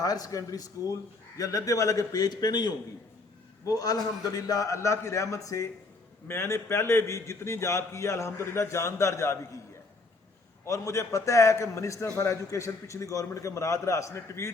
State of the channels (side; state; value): right; quieter; 3.5 dB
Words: ہائر سیکنڈری اسکول یا لدھے والا کے پیج پہ نہیں ہوں گی، وہ الحمدللہ اللہ کی رحمت سے میں نے پہلے بھی جتنی جاب کی ہے الحمدللہ جاندار جاب ہی کی ہے. اور مجھے پتہ ہے کہ منسٹر فار ایجوکیشن پچھلی گورنمنٹ کے مراد راس نے